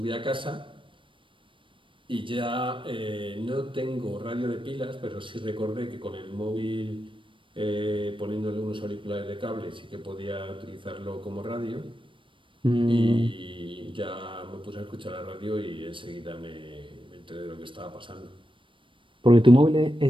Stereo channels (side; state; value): left; late; 0.25 ms